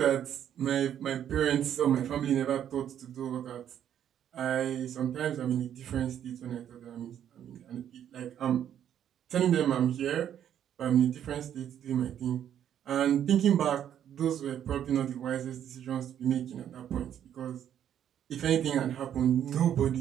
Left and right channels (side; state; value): left; quieter; 10.0 dB